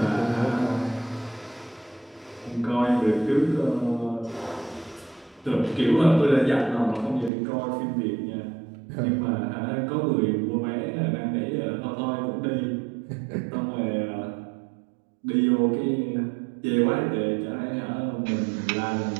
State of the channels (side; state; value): left; drops out; at 7.3 s